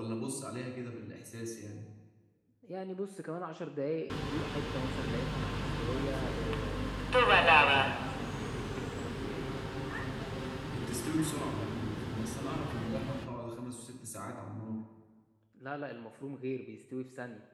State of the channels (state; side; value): identical; both; correlation 1.00